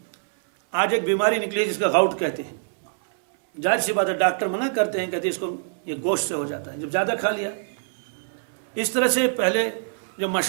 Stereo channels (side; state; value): left; silent; digital silence